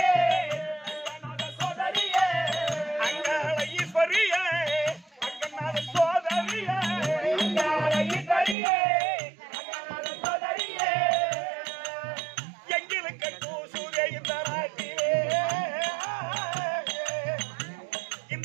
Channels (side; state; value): left; drops out; at 8.6 s